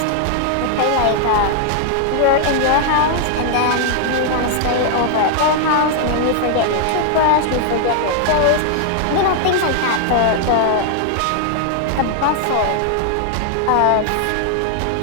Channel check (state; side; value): different; both; correlation 0.00